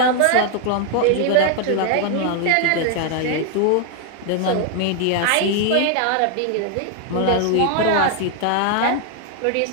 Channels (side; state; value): both; different; correlation 0.00